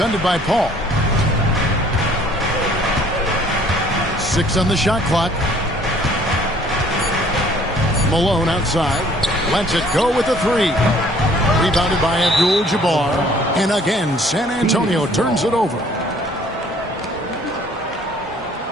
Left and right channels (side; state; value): both; normal; correlation 0.56